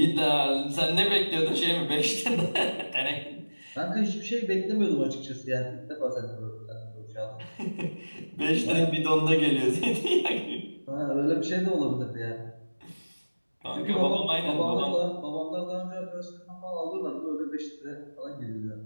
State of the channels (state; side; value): inverted; both; correlation -1.00